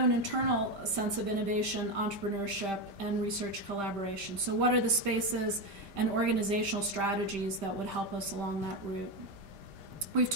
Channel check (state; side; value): late; left; 5.1 ms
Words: internal sense of innovation, entrepreneurship, and research collaboration. So what are the spaces and organizational strategies that would help us along that route? We've